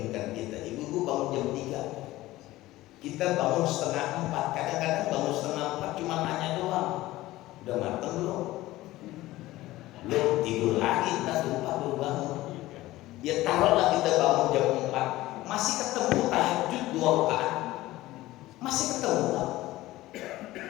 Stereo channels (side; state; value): right; quieter; 17.2 dB